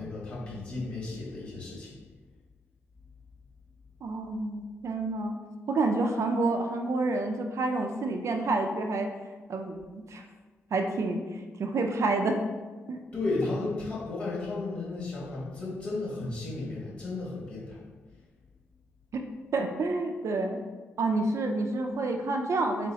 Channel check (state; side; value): normal; both; correlation 0.74